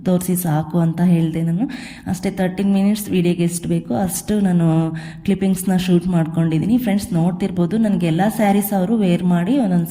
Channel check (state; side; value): identical; both; correlation 1.00